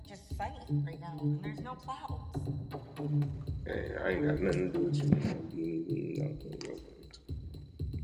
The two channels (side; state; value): both; identical; correlation 1.00